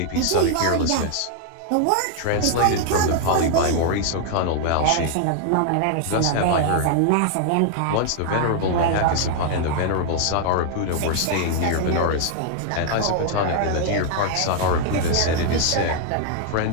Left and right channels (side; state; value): both; different; correlation 0.00